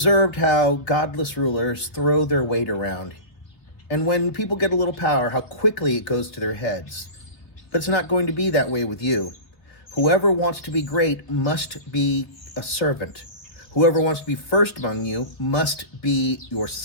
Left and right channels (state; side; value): late; right; 3.4 ms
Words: how godless rulers throw their weight around. And when people get a little power, how quickly it goes to their heads. But it's not going to be that way with you. Whoever wants to be great must be a servant. Whoever wants to be first among you must be your